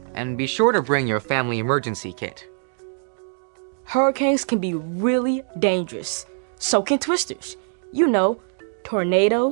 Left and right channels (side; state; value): left; silent; 63 dB below the other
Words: and be sure to bring your family emergency kit. Hurricanes can be really dangerous. So can twisters. You know,